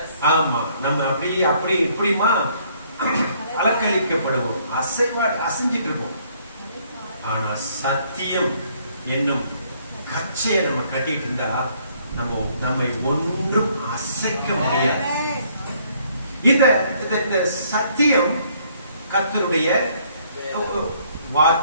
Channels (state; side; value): inverted; both; correlation -0.65